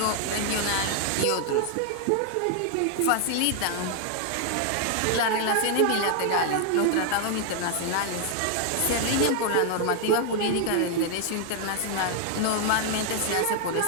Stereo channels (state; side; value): different; both; correlation 0.00